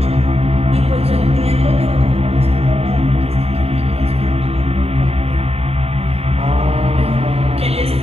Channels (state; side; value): late; left; 0.29 ms